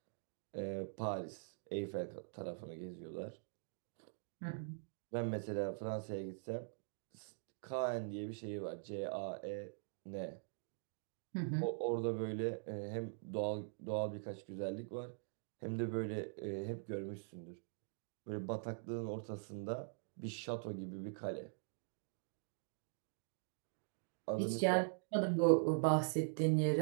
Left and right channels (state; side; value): silent; left; digital silence